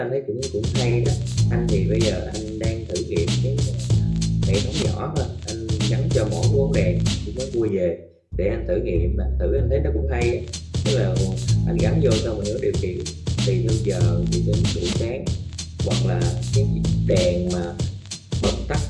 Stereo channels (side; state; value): both; identical; correlation 1.00